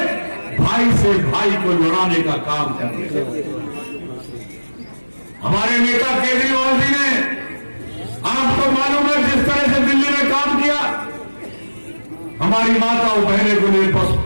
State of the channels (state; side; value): inverted; both; correlation -1.00